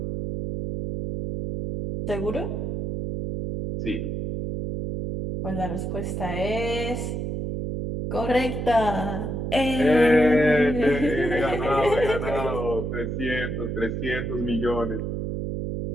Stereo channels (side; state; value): right; noise; hum, 3 dB below the sound